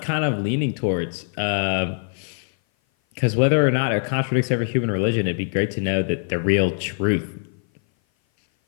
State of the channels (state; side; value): silent; right; 58 dB below the other